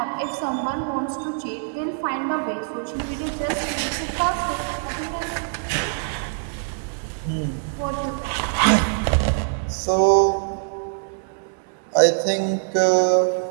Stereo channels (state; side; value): silent; left; digital silence